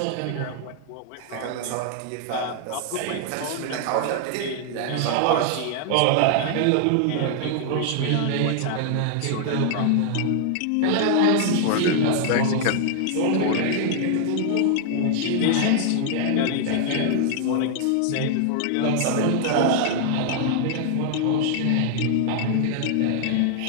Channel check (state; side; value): different; both; correlation 0.00